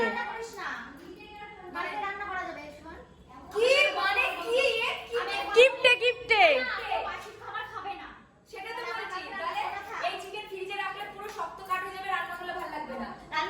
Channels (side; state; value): both; identical; correlation 1.00